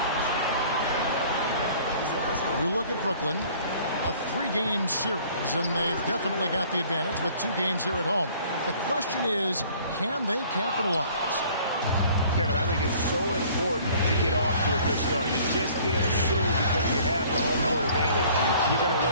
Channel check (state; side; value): inverted; both; correlation -0.53